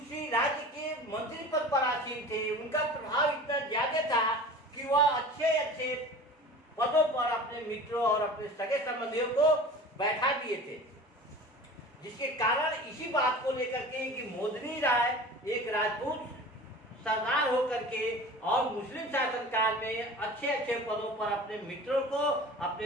राज्य के मंत्री पद पर आसीन थे। उनका प्रभाव इतना ज्यादा था कि वह अच्छे अच्छे पदों पर अपने मित्रों और अपने सगे संबंधियों को बैठा दिए थे, जिसके कारण इसी बात को लेकर के कि मोदनी राय एक राजपूत सरदार होकर के और मुस्लिम शासनकाल में अच्छे अच्छे पदों पर अपने मित्रों को,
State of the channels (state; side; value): normal; both; correlation 0.38